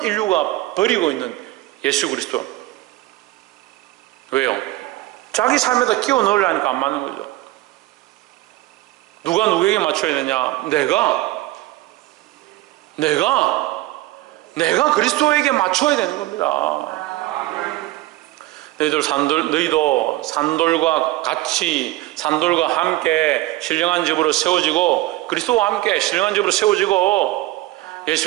인류가 버리고 있는 예수 그리스도. 왜요? 자기 삶에다 끼워 넣으려니까 안 맞는 거죠. 누가 누구에게 맞춰야 되냐? 내가 그리스도에게 맞춰야 되는 겁니다. 너희도 산돌과 같이, 산돌과 함께 신령한 집으로 세워지고, 그리스도와 함께 신령한 집으로 세워지고,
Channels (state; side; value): quieter; left; 17.5 dB